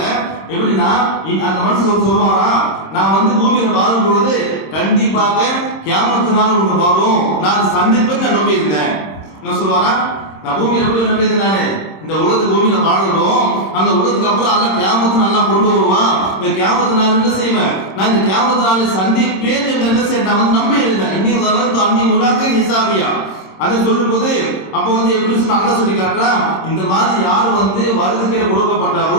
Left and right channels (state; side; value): late; right; 26 ms